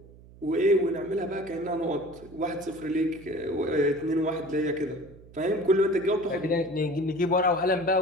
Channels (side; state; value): right; noise; hum, 22 dB below the sound